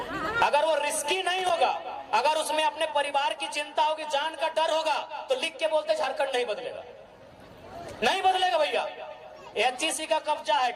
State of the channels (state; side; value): identical; both; correlation 1.00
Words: अगर वो रिस्की नहीं होगा, अगर उसमें अपने परिवार की चिंता होगी, जान का डर होगा, तो लिख के बोलते झारखंड नहीं बदलेगा, नहीं बदलेगा भैया। एचईसी का कब्जा है,